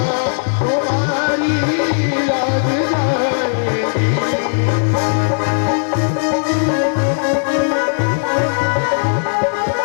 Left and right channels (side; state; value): right; silent; 60 dB below the other